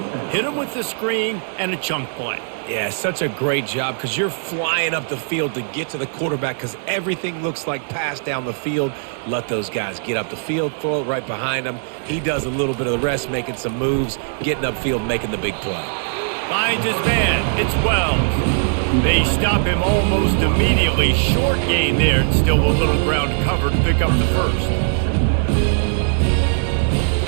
hit him with the screen, and a chunk play. Yeah, such a great job because you're flying up the field to get to the quarterback because everything looks like pass down the field. Let those guys get up the field, throw it right behind him. He does a little bit of the rest, making some moves, getting upfield, making the big play. Finds his man. It's Wells. They stop him almost immediately. Short gain there, and still a little ground cover to pick up the 1st.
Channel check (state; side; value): silent; left; 66 dB below the other